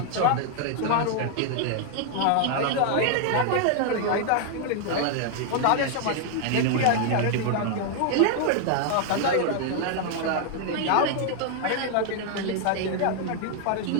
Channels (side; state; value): both; different; correlation 0.00